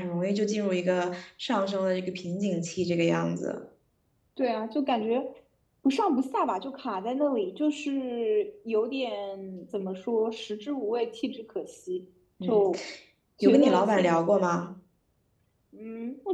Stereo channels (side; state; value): both; identical; correlation 1.00